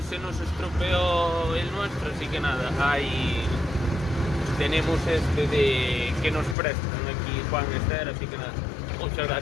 se nos estropeó el nuestro, así que nada, ahí tenemos este de que nos prestan aquí Juan Esther, así que nada, muchas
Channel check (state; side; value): drops out; right; at 6.6 s